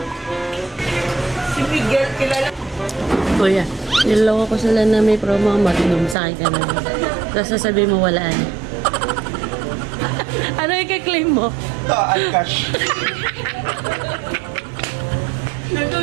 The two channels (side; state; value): left; drops out; at 6.2 s